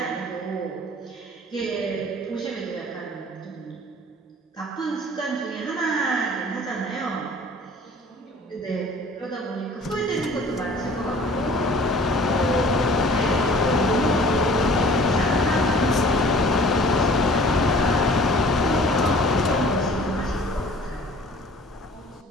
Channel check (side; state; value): both; normal; correlation 0.49